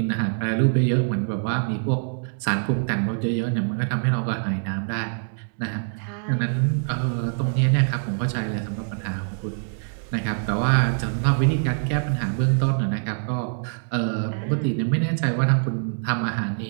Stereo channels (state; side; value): silent; left; digital silence